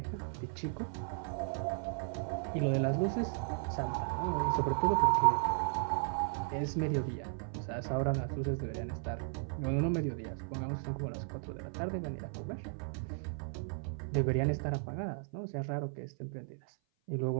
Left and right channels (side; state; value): left; silent; 54 dB below the other